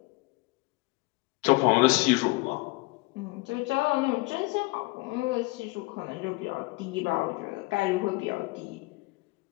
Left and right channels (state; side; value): quieter; right; 23.7 dB